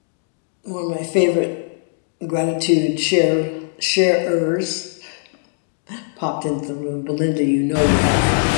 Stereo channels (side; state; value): right; silent; digital silence